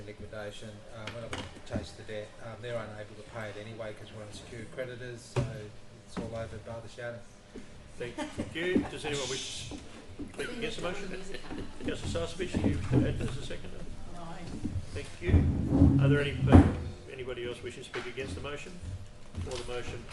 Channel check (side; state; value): both; identical; correlation 1.00